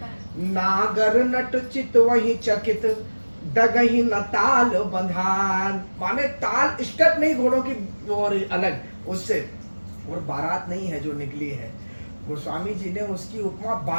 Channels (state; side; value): inverted; both; correlation -1.00